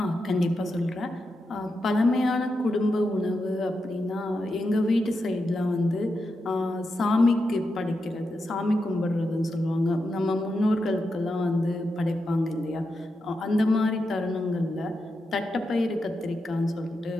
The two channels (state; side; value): normal; both; correlation 0.87